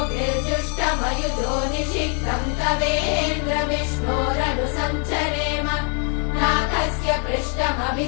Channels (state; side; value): quieter; right; 39.6 dB